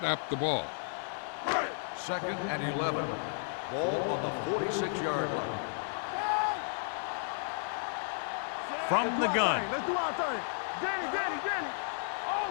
the ball. Second and 11. Ball on the 46-yard line. From the gun. Let's do our thing. Danny. Oh,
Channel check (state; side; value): silent; right; digital silence